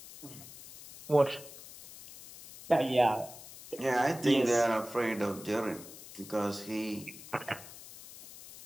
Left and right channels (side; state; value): left; noise; hiss, 16 dB below the sound